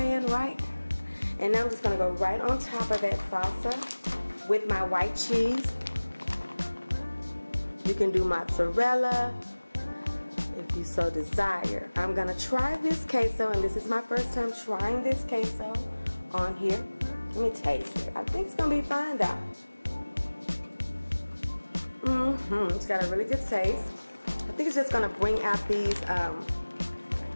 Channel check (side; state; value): both; inverted; correlation -1.00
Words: right? And now I'm just gonna go right on top of that salsa with my white cheese. You can do mozzarella if you so desire. I'm gonna try this queso, and this is my first time trying this queso on here. Let me taste it. I think it's gonna be fine though. It's got a really good taste. I think it's just gonna bring out these